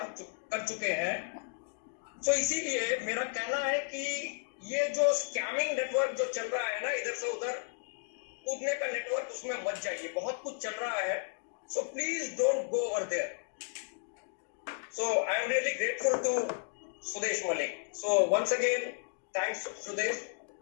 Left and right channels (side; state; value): right; silent; digital silence